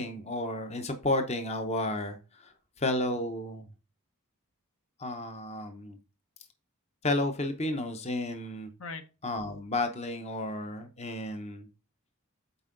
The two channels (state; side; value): normal; both; correlation 0.16